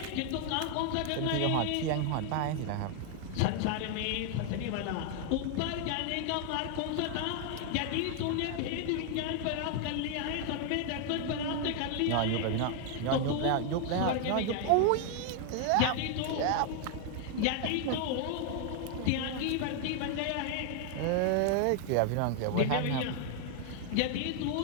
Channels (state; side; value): different; both; correlation 0.00